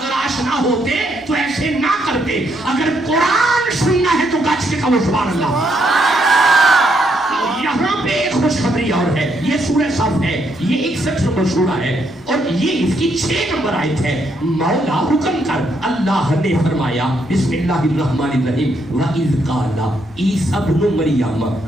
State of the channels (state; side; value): noise; left; rumble, 28 dB below the sound